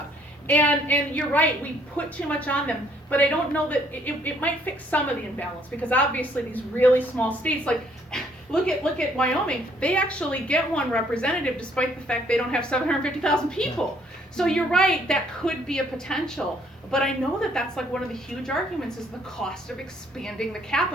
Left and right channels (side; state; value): both; normal; correlation 0.65